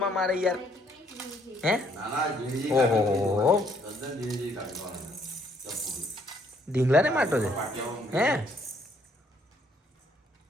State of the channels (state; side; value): normal; both; correlation 0.67